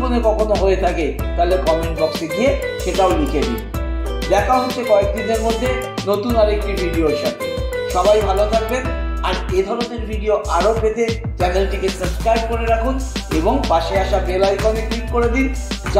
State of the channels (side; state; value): both; identical; correlation 1.00